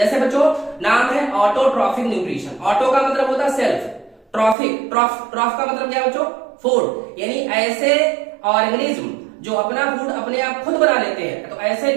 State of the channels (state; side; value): drops out; left; at 4.5 s